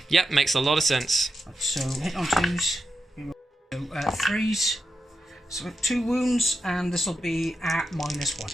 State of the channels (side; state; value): both; normal; correlation 0.88